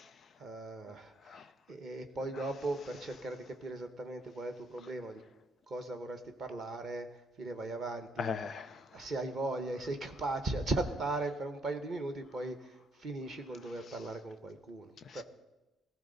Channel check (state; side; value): normal; both; correlation 0.71